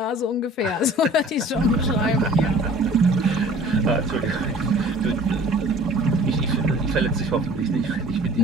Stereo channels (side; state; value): both; normal; correlation 0.49